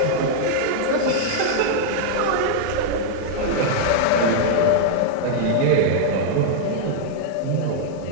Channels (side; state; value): both; different; correlation -0.01